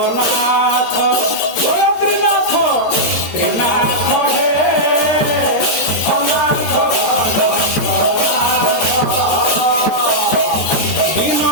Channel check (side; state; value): right; late; 13 ms